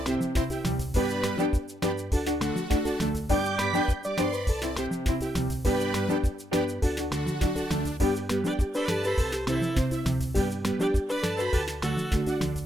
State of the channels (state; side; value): normal; both; correlation 0.81